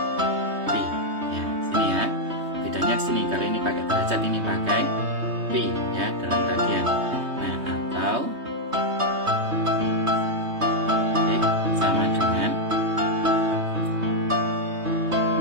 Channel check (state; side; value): late; left; 3.2 ms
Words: pi ya. Sini ya, bedanya di sini. Kalau ini pakai derajat, ini pakai pi ya, dalam radian. Nah, atau X sama dengan